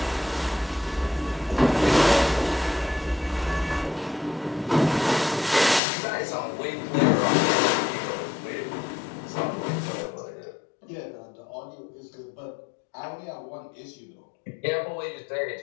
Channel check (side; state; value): right; drops out; at 5.8 s